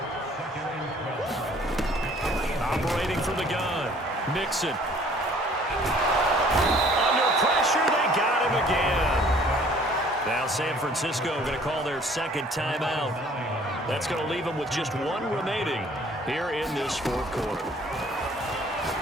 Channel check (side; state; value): both; normal; correlation 0.55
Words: Operating from the gun. Mixon. Under pressure, they got him again. Now San Francisco going to call their 2nd timeout. That's going to leave them with just 1 remaining here in this 4th quarter.